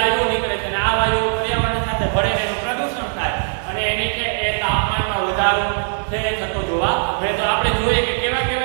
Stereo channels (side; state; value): left; silent; digital silence